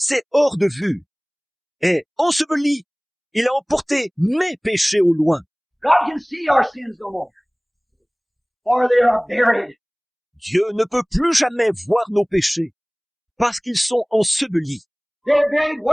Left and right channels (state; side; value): identical; both; correlation 1.00